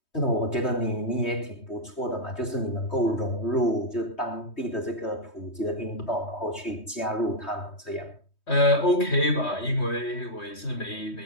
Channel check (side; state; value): right; late; 3.2 ms